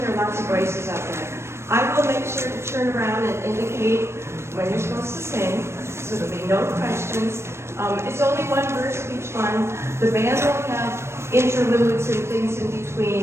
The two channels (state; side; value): late; left; 0.13 ms